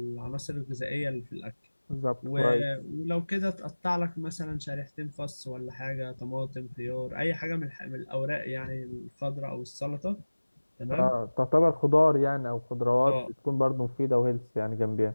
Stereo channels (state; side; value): inverted; both; correlation -1.00